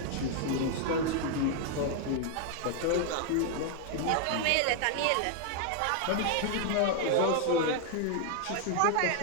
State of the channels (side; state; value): both; different; correlation 0.00